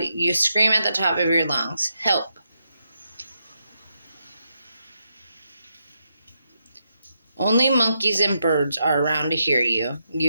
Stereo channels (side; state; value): both; inverted; correlation -0.83